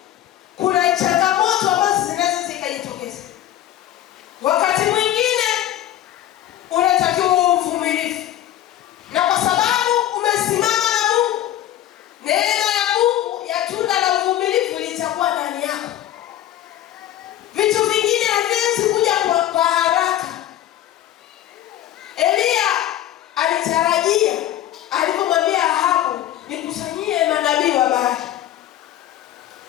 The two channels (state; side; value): quieter; right; 12.5 dB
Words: kuna changamoto ambazo zinaweza zikajitokeza. Wakati mwingine unatakiwa uvumilivu. Na kwa sababu umesimama na Mungu, neema ya Mungu ya tunda la uvumilivu litakuwa ndani yako. Vitu vingine haviwezi kuja kwa haraka. Elia alitarajia alipomwambia Ahabu, nikusanyie manabii wa Baali,